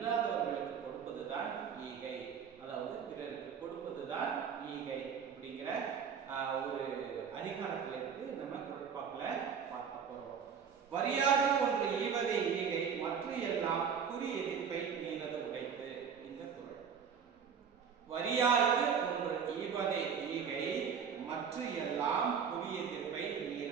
கொடுப்பதுதான் ஈகை, அதாவது பிறருக்கு கொடுப்பதுதான் ஈகை அப்படிங்கிற ஒரு அதிகாரத்துல இருக்கு. நம்ம குறட்பாக்குல பார்க்க போறோம். வரியாக ஒன்று ஈவதை ஈகை, மற்ற எல்லாம் குறி எதிர்ப்பை நீரது உடைத்து. இந்த குறள் வரியாக ஒன்று ஈவதை ஈகை, மற்ற எல்லாம் குறி எதிர்ப்பை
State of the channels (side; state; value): left; quieter; 7.0 dB